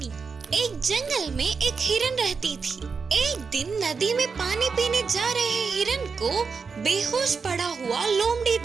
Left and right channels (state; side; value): quieter; left; 5.2 dB